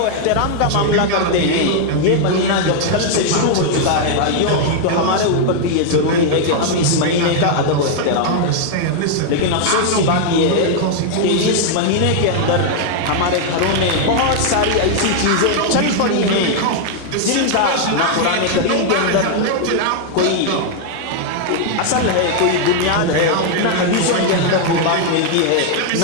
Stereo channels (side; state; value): both; different; correlation 0.00